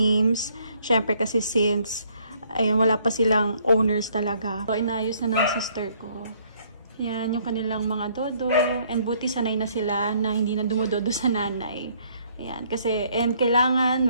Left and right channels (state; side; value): inverted; both; correlation -0.64